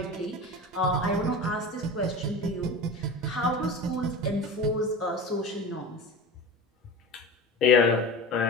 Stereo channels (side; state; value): both; normal; correlation 0.31